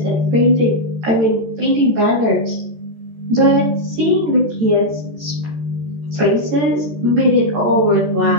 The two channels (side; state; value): left; late; 14 ms